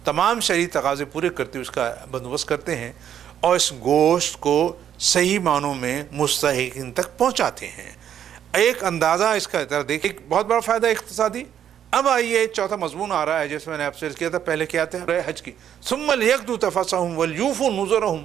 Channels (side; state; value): left; quieter; 9.7 dB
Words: تمام شرعی تقاضے پورے کرتے ہوئے اس کا بندوبست کرتے ہیں اور اس گوشت کو صحیح معنوں میں مستحقین تک پہنچاتے ہیں. ایک اندازہ اس کا ذرا دیکھیں، ایک بہت بڑا فائدہ اقتصادی. اب آئیے چوتھا مضمون آ رہا ہے جیسے میں نے آپ سے عرض کیا تھا. پہلے کیا تھا حج کی، ثم لیقضوا تفثهم ولیوفوا